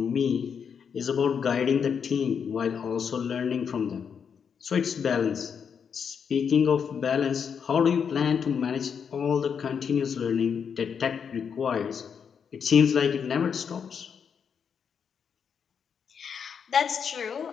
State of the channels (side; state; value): right; quieter; 6.9 dB